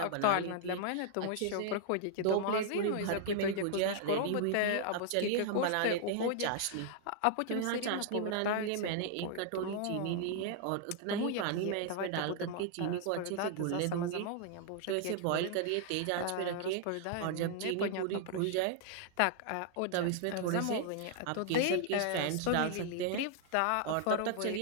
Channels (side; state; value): both; different; correlation -0.01